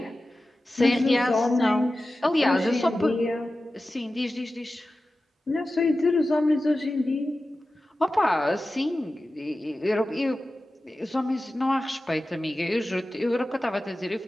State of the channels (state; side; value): normal; both; correlation 0.94